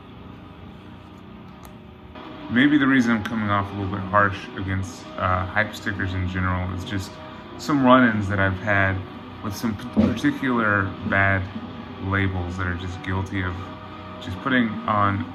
Maybe the reason I'm coming off a little bit harsh against hype stickers in general is just some run-ins that I've had with some particular bad labels that are just guilty of just putting on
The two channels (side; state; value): both; identical; correlation 1.00